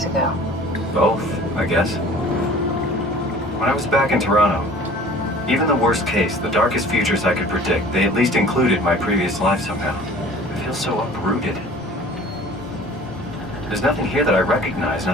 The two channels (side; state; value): both; normal; correlation 0.47